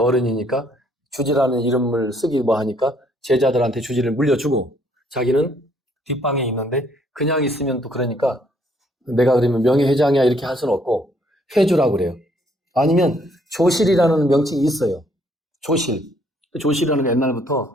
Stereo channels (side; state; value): both; normal; correlation 0.67